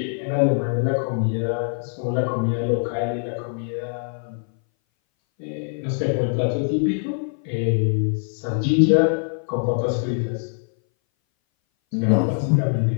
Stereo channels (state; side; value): silent; right; 60 dB below the other